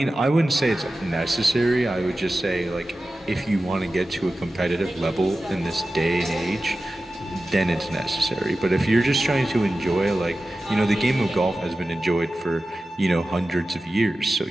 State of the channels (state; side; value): normal; both; correlation 0.94